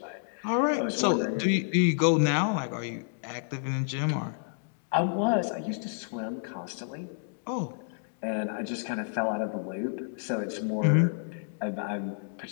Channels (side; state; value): right; silent; digital silence